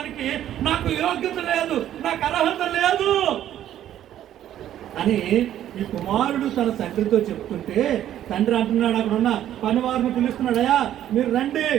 నాకు యోగ్యత లేదు, నాకు అర్హత లేదు అని ఈ కుమారుడు తన తండ్రితో చెప్తుంటే తండ్రి అంటున్నాడు, అక్కడ ఉన్న పనివారిని పిలుస్తున్నాడు. అయ్యా, మీరు రండి,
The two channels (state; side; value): quieter; left; 11.6 dB